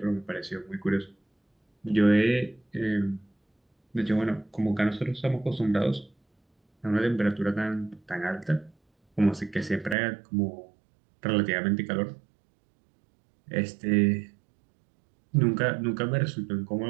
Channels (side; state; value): left; drops out; at 10.0 s